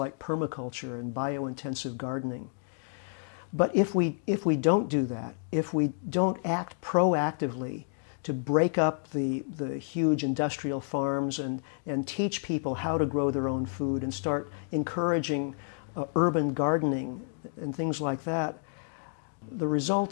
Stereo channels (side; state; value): right; silent; digital silence